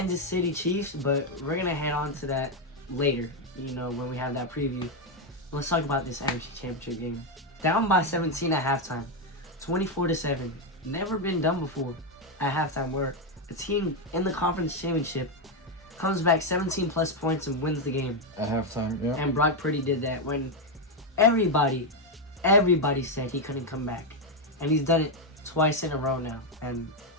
City Chiefs, but we're going to head on to that later, when we have that preview. Let's talk about this NFC Championship game. Down by 17 at halftime. 24-7. Never been done before at halftime where a team in the conference championship comes back 17 plus points and wins the game. At halftime, yeah. And Brock Purdy did that when everybody said he couldn't come back. And he's done it twice in a row now. And,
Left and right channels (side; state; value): both; normal; correlation 0.05